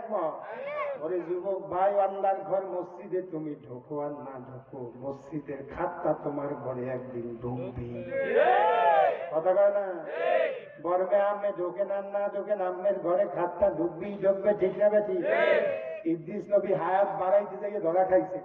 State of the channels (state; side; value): identical; both; correlation 1.00